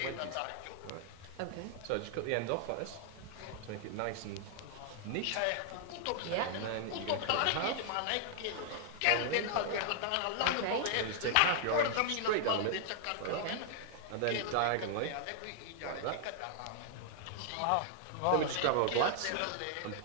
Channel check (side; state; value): both; different; correlation 0.00